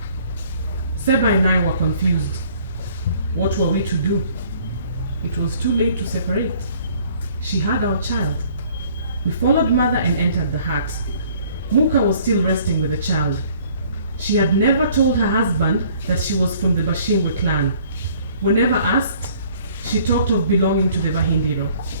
Seba and I were confused. What were we to do? It was too late to separate. She had our child. We followed mother and entered the hut. Muka was still resting with the child. She had never told her husband that she was from the Bashingwe clan. Whenever asked, she talked of belonging to the Bahindiro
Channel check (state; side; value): inverted; both; correlation -0.57